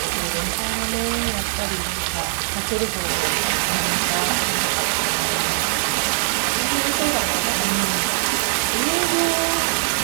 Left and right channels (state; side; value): silent; left; digital silence